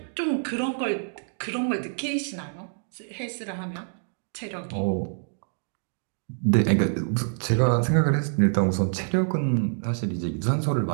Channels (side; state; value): left; silent; 61 dB below the other